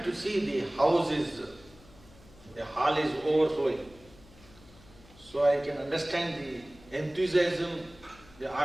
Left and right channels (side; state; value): left; noise; hum, 24 dB below the sound